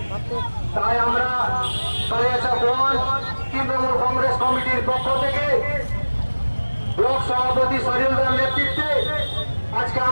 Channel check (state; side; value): inverted; both; correlation -1.00